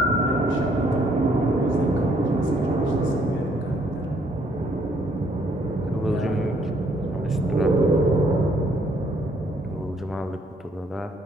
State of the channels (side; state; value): both; normal; correlation 0.67